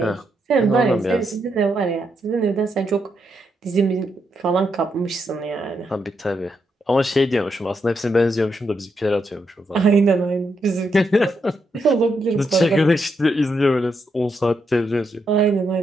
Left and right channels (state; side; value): normal; both; correlation 0.81